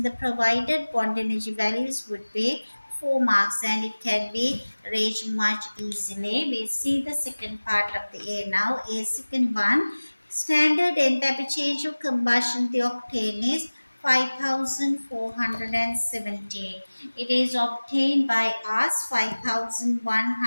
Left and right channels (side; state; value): both; inverted; correlation -1.00